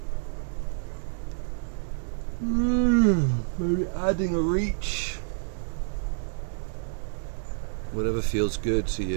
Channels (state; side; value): silent; left; digital silence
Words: Maybe adding a reach. Whatever feels good to